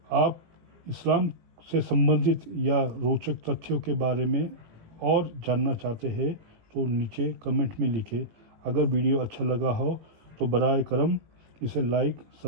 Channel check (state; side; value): late; left; 18 ms